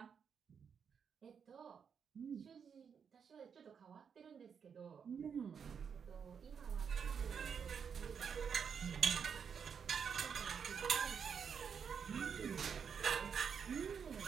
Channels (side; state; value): left; quieter; 6.9 dB